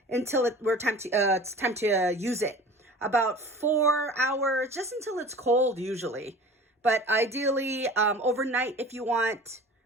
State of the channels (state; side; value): normal; both; correlation 0.41